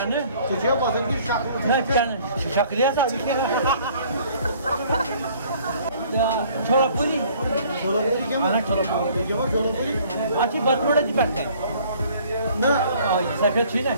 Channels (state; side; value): inverted; both; correlation -0.56